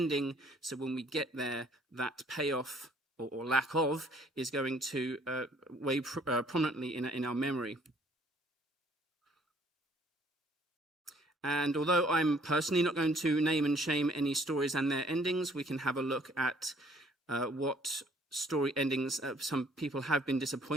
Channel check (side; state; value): both; normal; correlation 0.61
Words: So when we get there, that payoff or lack of is going to weigh prominently in our memory. And although I'm personally not going to name and shame any stories and their endings, we can have a look at what story endings some people have been